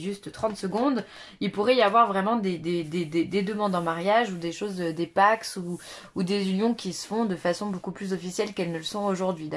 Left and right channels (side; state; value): both; identical; correlation 1.00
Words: 30 secondes, il pourrait y avoir vraiment des demandes en mariage ou des choses, des pax ou des unions qui se font de façon beaucoup plus officielle qu'elles ne le sont aujourd'hui,